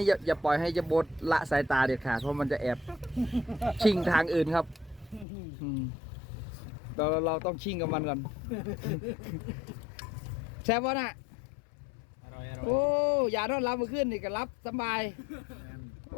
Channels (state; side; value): drops out; right; at 5.2 s